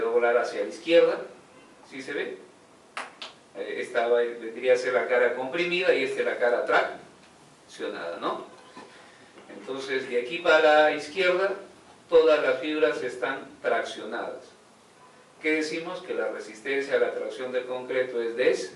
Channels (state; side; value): identical; both; correlation 1.00